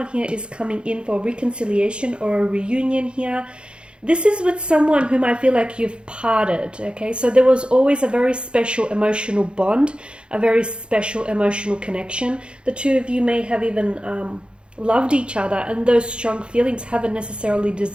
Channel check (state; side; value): late; left; 0.055 ms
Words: here is coming in for reconciliation or a reunion here. This is with someone whom I feel like you've parted, okay? So there was always a very special emotional bond, a very special emotional connection. The two of you may have even loved each other, and those strong feelings haven't necessarily